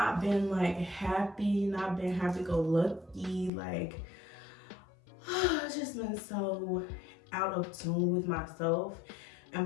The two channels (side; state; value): right; drops out; at 3.5 s